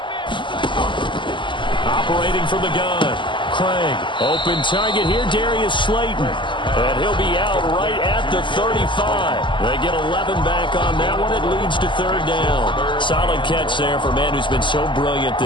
Operating from the gun. Craig, open target here, Darius Slayton. And he'll be out right at the 35. They get 11 back on that one. It leads to 3rd down. Solid catch there for a man who's been so brilliant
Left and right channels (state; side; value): late; right; 0.24 ms